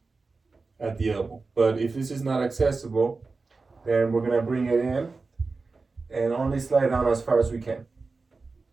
at the elbow. But if this is not accessible, then we're gonna bring it in and only slide down as far as we can.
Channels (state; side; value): quieter; left; 4.0 dB